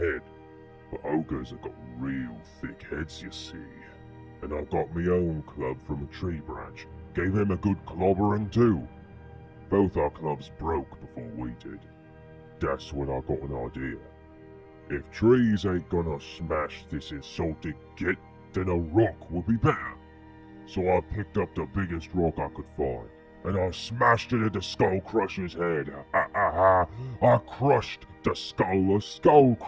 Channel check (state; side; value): identical; both; correlation 1.00